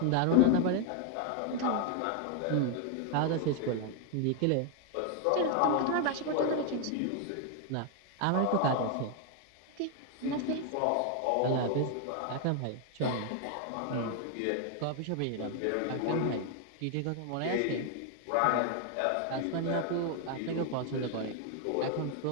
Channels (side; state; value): both; different; correlation 0.00